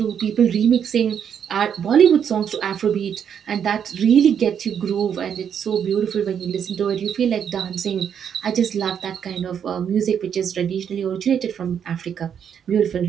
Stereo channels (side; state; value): left; quieter; 8.2 dB